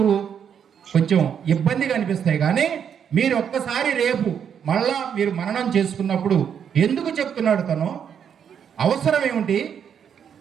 కొంచెం ఇబ్బందిగా అనిపిస్తాయి, కానీ మీరు ఒక్కసారి రేపు మళ్ళా మీరు మననం చేసుకున్నప్పుడు ఎందుకు చెప్తున్నాడు తను, అవసరం ఏమిటి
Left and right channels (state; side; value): quieter; left; 8.0 dB